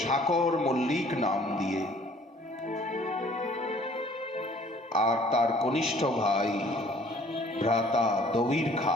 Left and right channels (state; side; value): normal; both; correlation 0.55